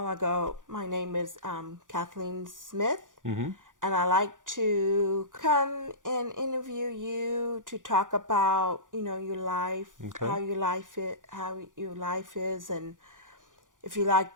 I go, my name is Kathleen Smith. And I like to come and interview you to talk about, your life, okay. how your life is, and if you like,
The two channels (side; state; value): left; late; 0.88 ms